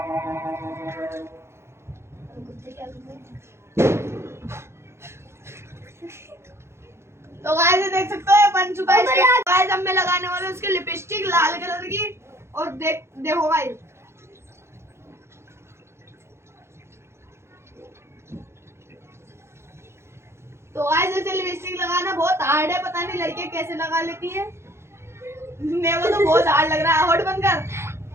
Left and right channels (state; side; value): late; left; 0.13 ms